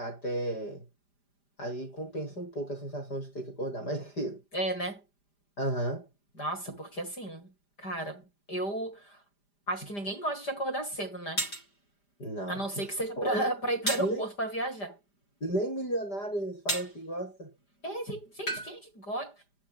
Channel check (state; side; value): late; right; 5.0 ms